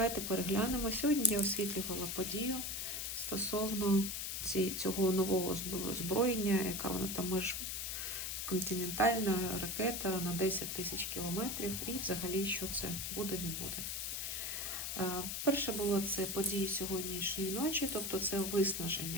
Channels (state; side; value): noise; left; hiss, 3 dB below the sound